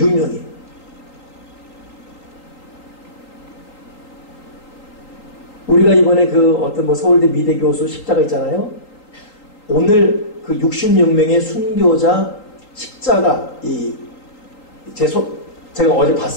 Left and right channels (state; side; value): late; right; 3.8 ms